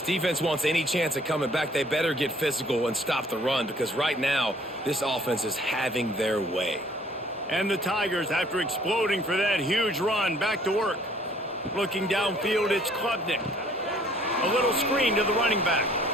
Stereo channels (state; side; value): normal; both; correlation 0.58